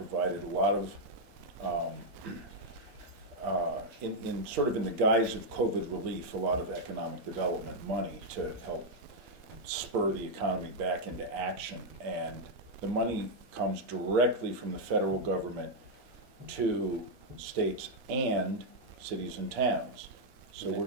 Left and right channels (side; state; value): left; late; 4.1 ms